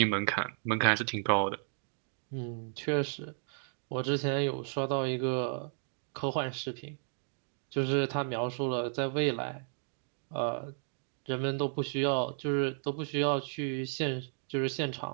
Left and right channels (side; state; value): left; silent; 55 dB below the other